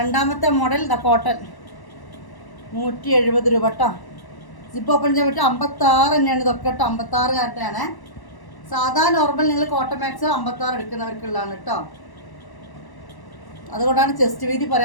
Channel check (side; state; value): right; late; 1.0 ms